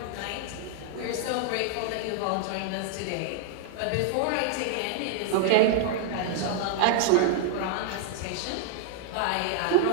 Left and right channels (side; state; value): both; different; correlation -0.01